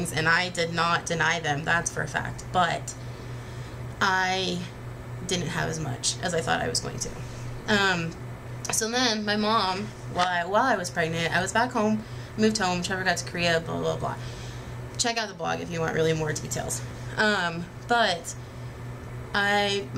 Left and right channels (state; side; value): identical; both; correlation 1.00